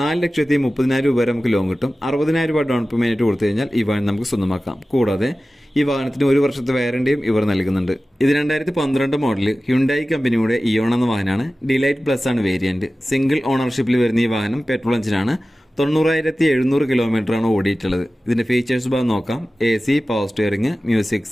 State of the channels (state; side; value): normal; both; correlation 0.96